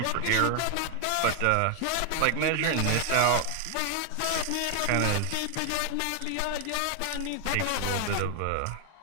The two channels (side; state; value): both; different; correlation 0.00